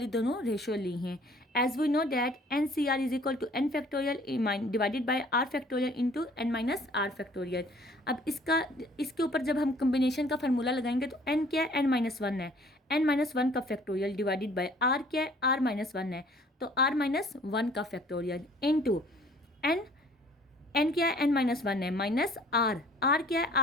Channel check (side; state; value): both; normal; correlation 0.55